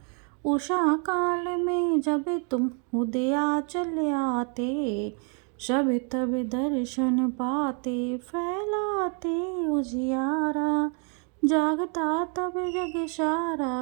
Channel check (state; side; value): quieter; left; 39.8 dB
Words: उषा काल में जब तुम उदयाचल आते, सब तब दर्शन पाते, फैलाते उजियारा, जागता तब जग